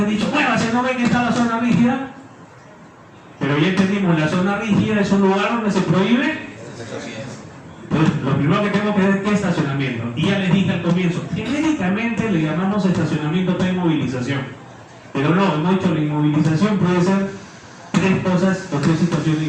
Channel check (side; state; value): both; identical; correlation 1.00